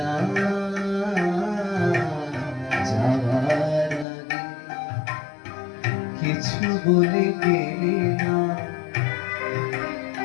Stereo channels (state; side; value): drops out; right; at 4.0 s